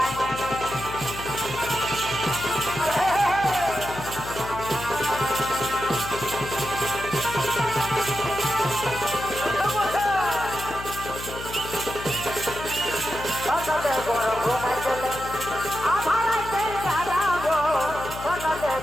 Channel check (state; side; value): noise; left; hum, 11 dB below the sound